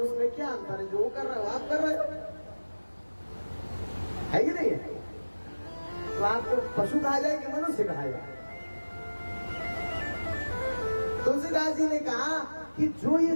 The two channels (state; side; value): inverted; both; correlation -1.00